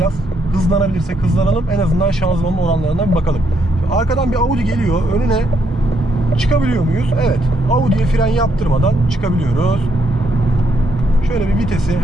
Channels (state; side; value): normal; both; correlation 0.75